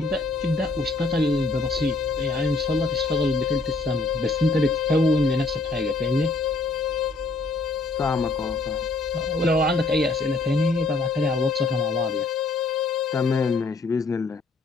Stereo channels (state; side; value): quieter; right; 3.3 dB